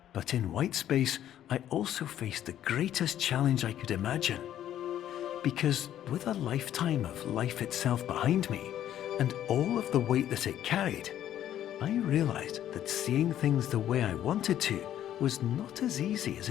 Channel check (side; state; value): right; quieter; 11.4 dB